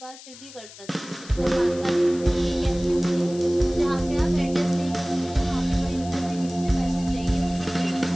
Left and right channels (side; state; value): left; noise; hiss, 18 dB below the sound